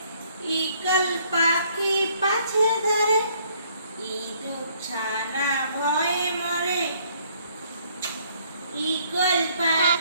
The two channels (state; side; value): inverted; both; correlation -0.64